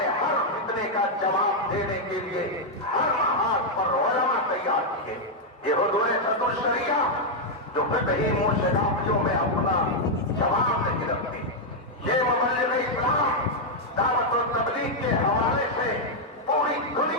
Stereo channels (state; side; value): normal; both; correlation -0.02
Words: ہر فتنے کا جواب دینے کے لیے ہر محاذ پر علماء تیار کیے. یہ حضور صدر الشریعہ جو فقہی موشدافیوں میں اپنا جواب نہیں رکھتے, یہ مبلغ اسلام دعوت و تبلیغ کے حوالے سے پوری